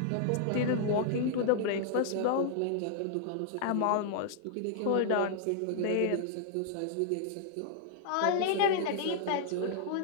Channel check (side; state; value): both; different; correlation -0.01